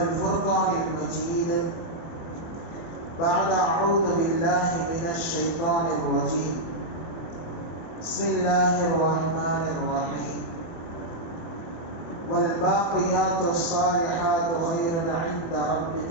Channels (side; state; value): right; late; 24 ms